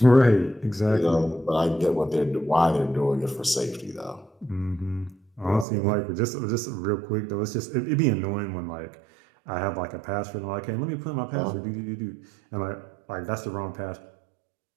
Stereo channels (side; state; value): left; drops out; at 5.7 s